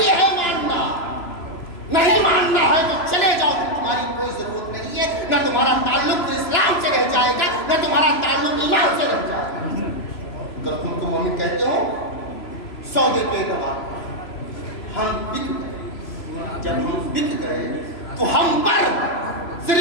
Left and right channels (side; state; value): right; late; 3.0 ms